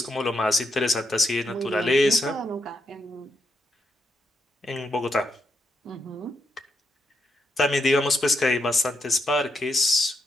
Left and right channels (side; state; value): both; normal; correlation 0.80